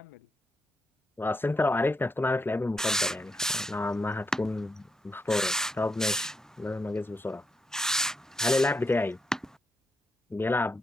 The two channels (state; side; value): normal; both; correlation 0.81